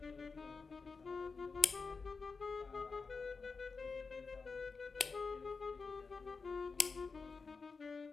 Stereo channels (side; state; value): right; quieter; 4.6 dB